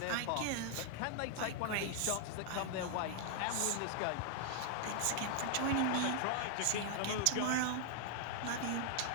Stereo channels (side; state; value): both; different; correlation 0.00